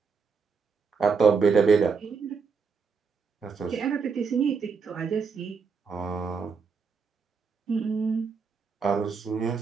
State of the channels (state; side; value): quieter; left; 5.4 dB